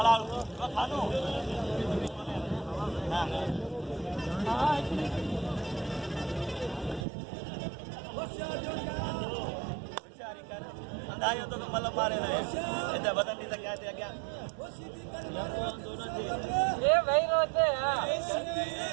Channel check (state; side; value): drops out; left; at 7.1 s